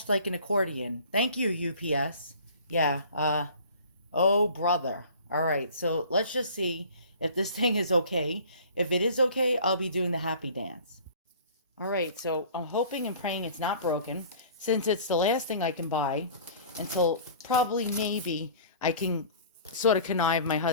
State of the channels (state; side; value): inverted; both; correlation -0.46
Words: like an accordion. Thank you, UPS. Yeah, oh brother. All right, so let's just see if this thing is okay. If it is okay, I'll be doing the happy dance. All right, so I'm hoping and praying it's not broken since it's the last thing I can buy until probably maybe I can sort of connive my